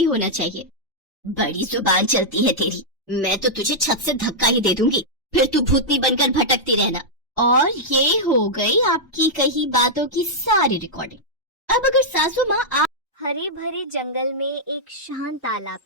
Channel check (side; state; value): both; normal; correlation -0.07